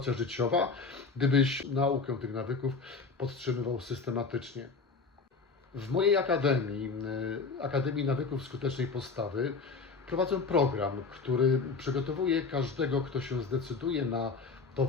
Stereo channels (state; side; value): quieter; right; 4.5 dB